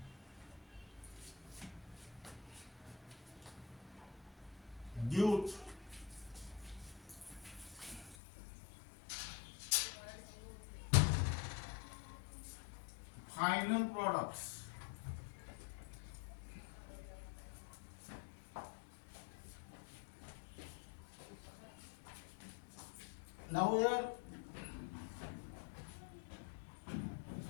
due final products. Now here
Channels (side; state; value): right; drops out; at 8.2 s